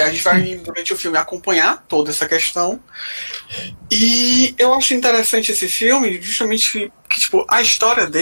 gente vai, durante o filme, acompanhar toda essa questão. E eu acho interessante esse filme, justamente que tipo, a história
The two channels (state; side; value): inverted; both; correlation -1.00